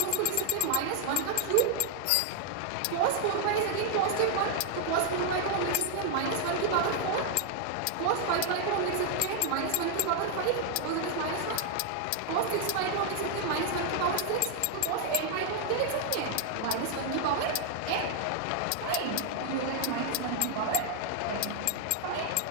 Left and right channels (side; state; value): both; different; correlation 0.00